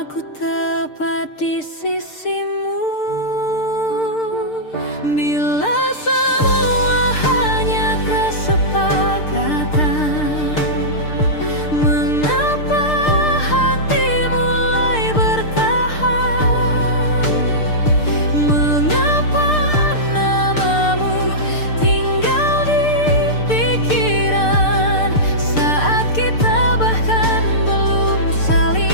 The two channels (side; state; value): right; late; 6.7 ms